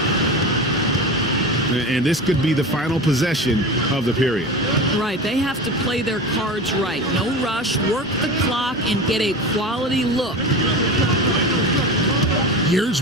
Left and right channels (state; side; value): normal; both; correlation 0.28